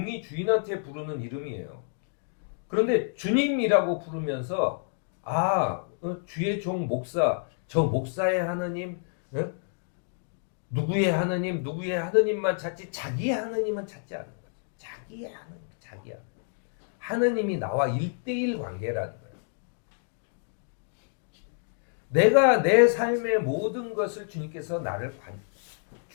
주인한테 부르는 이름이에요. 그런데 주님이라고 부르면서 주의 종 목사, 저 목사의 하느님, 누구의 하느님만 찾지 자기의 하느님은 찾지 않는 거예요. 자기의 하느님, 자기야. 하느님이 나와 1대1 관계라는 거예요. 내가 내 삶의 모든 것을 주님께서 나를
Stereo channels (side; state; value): right; silent; digital silence